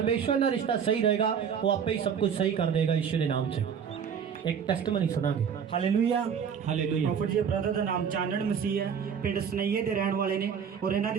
ना रिश्ता सही रहेगा, वो आपे ही सब कुछ सही कर देगा यीशु के नाम से। एक टेस्टमनी सुनांगे। हालेलुया। हालेलुया। प्रॉफिट जी ब्रदर ਦਾ ਨਾਮ ਚਾਨਣ ਮਸੀਹ ਹੈ, ਪਿੰਡ ਸਨਈਏ ਦੇ ਰਹਿਣ ਵਾਲੇ ਨੇ ਔਰ ਇਹਨਾਂ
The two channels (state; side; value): quieter; left; 7.3 dB